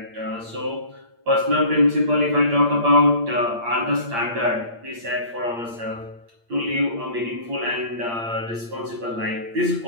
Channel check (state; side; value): late; left; 8.6 ms